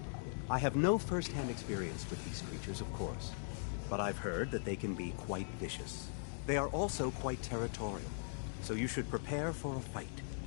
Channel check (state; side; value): silent; right; digital silence